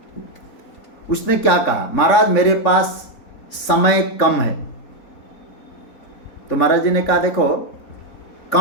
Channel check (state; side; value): late; right; 3.7 ms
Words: उसने क्या कहा, महाराज मेरे पास समय कम है। तो महाराज जी ने कहा देखो,